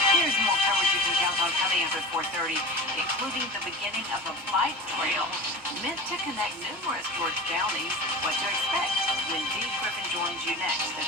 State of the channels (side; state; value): both; normal; correlation 0.34